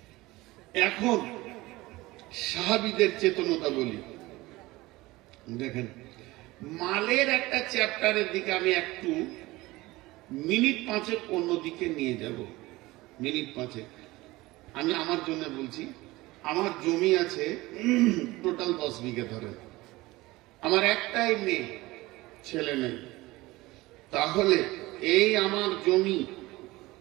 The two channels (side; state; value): left; quieter; 19.9 dB